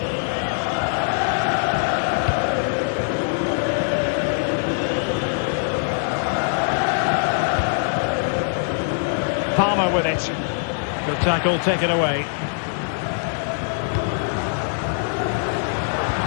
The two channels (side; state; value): right; silent; 64 dB below the other